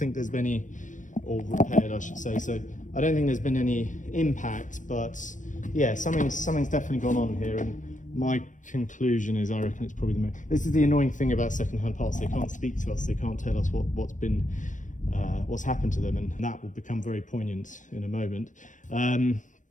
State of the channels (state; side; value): late; right; 0.37 ms